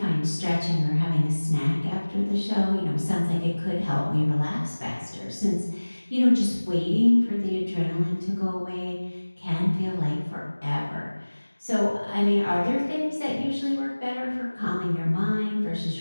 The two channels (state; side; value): inverted; both; correlation -1.00